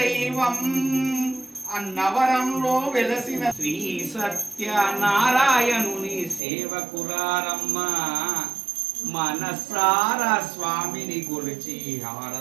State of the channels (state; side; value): drops out; left; at 6.4 s